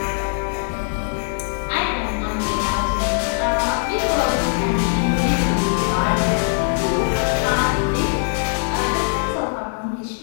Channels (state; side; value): silent; right; digital silence